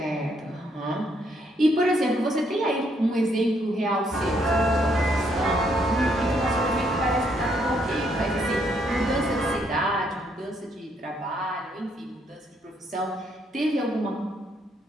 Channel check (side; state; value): both; normal; correlation 0.72